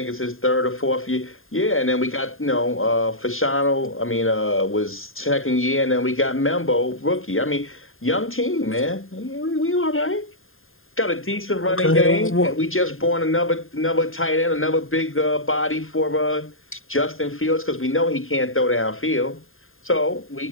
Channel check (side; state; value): right; late; 0.60 ms